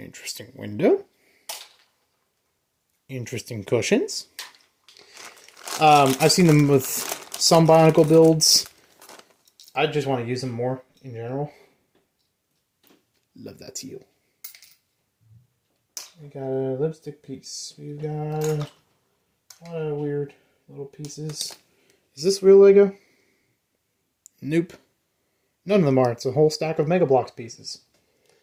window. Interesting cushions. I've seen them with some bionicle builds. I just want to use them more in general. Love that teal. We got a lipstick piece. We got a lot of weird little pieces. Is this real Lego? Nope. None of them are. It's a whole stack of Mega Bloks pieces.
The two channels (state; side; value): identical; both; correlation 1.00